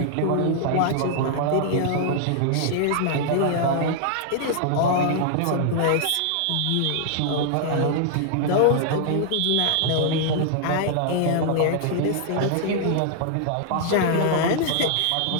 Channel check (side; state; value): both; different; correlation -0.01